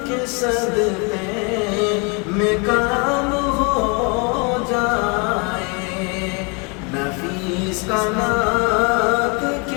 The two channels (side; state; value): right; quieter; 32.8 dB